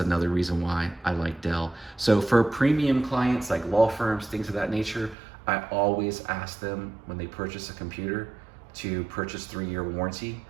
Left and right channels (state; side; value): drops out; left; at 5.2 s